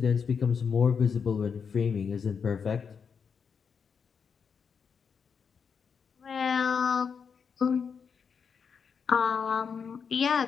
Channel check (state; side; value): quieter; right; 6.3 dB